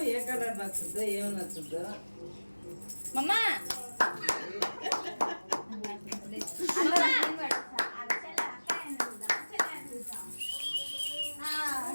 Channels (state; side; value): inverted; both; correlation -1.00